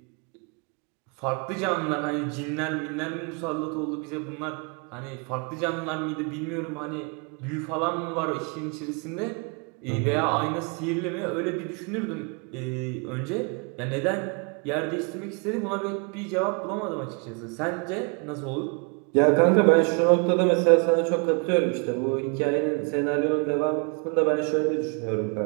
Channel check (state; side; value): quieter; left; 35.3 dB